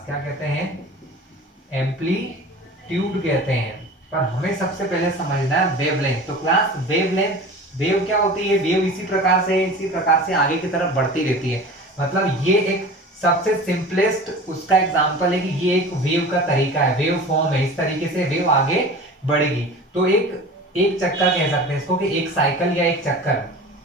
क्या कहते हैं? एम्पलीट्यूड कहते हैं। पर हमें सबसे पहले समझना है वेवलेंथ। तो क्लास वेवलेंथ, वेव क्या होती है? वेव इसी प्रकार से आगे की तरफ बढ़ती रहती है। मतलब ये एक सबसे सिंपलेस्ट उसका एग्जांपल है कि ये एक वेव का तरीका है, वेव फॉर्म है, इस तरीके से वेव आगे बढ़ेगी। तो एक चक्कर कह सकते हैं इसको, कि एक साइकिल या एक चक्कर।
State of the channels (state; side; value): normal; both; correlation 0.37